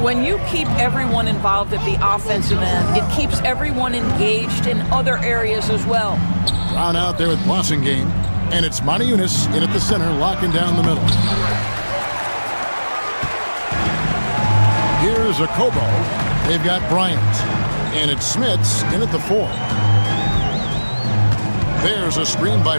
you keep everyone involved at the offensive end, it keeps everyone engaged in other areas as well. Brown out there with Blossingame, and it's Monaco in at the center, locking down the middle. Here's a Kobo. They've got Bryant, and it's Smits in at the 4. There's a screen by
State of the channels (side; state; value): both; inverted; correlation -1.00